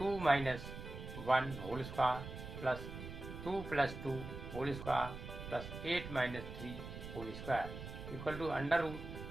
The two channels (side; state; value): right; noise; rumble, 9 dB below the sound